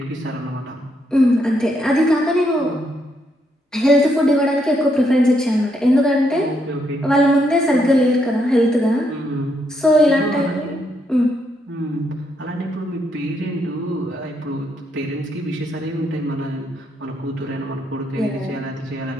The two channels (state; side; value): normal; both; correlation 0.76